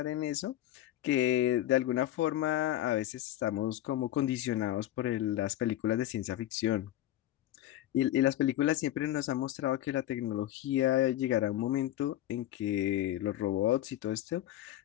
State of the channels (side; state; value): right; quieter; 13.4 dB